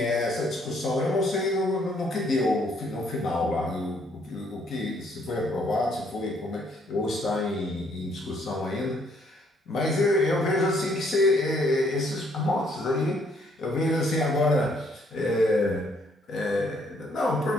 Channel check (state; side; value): normal; both; correlation 0.67